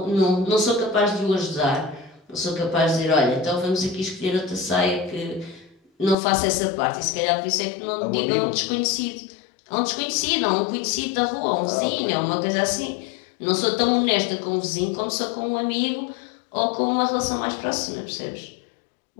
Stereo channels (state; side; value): drops out; right; at 6.2 s